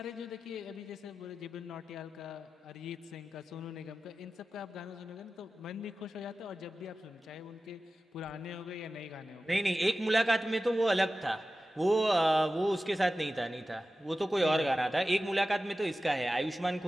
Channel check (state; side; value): normal; both; correlation 0.95